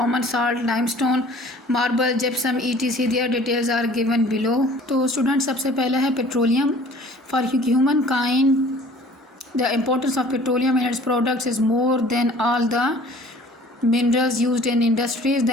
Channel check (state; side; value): normal; both; correlation 0.50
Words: salt, limestone, marble, gypsum, etc. Their details are given below. तो स्टूडेंट, सबसे पहला है petroleum. For human kind the importance of petroleum and its products is more than all the minerals used in industries. The